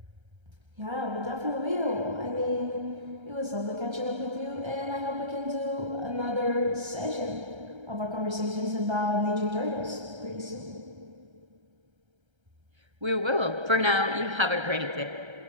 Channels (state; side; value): late; left; 1.3 ms